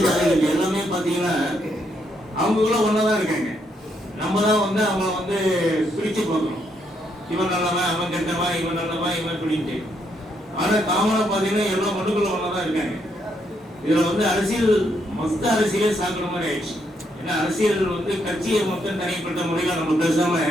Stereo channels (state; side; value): normal; both; correlation 0.75